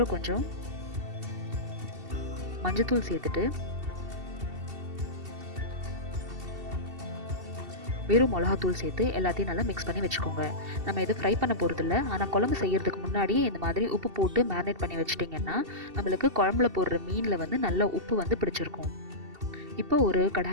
கொஞ்சம் மஞ்சத்தூள் சேர்த்துட்டு வெறும் மிளகாத்தூள் சேர்த்து எல்லாத்தையும் நல்லா மிக்ஸ் பண்ணி வச்சுக்கோங்க. நம்ம எதுவும் ஃப்ரை பண்ண போகிறதில்ல, ஆனால் குழம்பு செய்கிறதுக்கு முன்னாடியே இந்த மாதிரி உப்பு போட்டு மேரினேட் பண்ணி வச்சிட்டிங்கன்னா நம்மளுக்கு குழம்புல போடுற மீனில் வந்து நல்ல உப்பு வந்து பிடிச்சிருக்கும். இப்போ ஒரு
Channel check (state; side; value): late; left; 2.7 ms